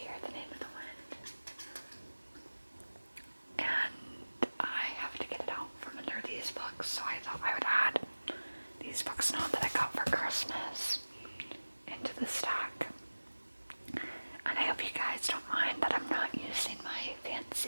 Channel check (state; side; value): inverted; both; correlation -1.00